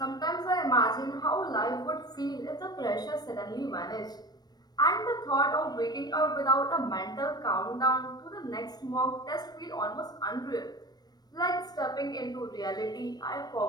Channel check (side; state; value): right; late; 0.19 ms